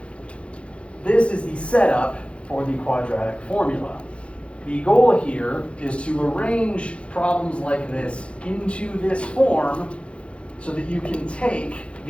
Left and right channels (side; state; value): right; late; 0.060 ms